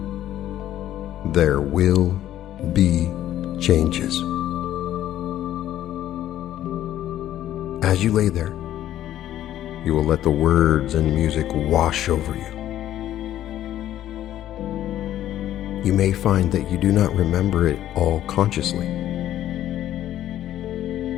There will be changes. As you lay there, you will let the words and music wash over you. You may find that you do not remember it all consciously.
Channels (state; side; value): quieter; right; 12.4 dB